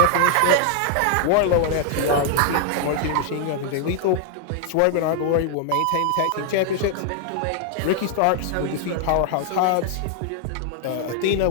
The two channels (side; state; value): both; different; correlation 0.00